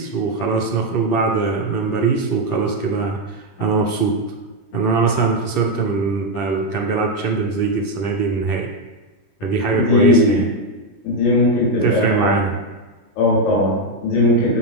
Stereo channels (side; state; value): right; late; 20 ms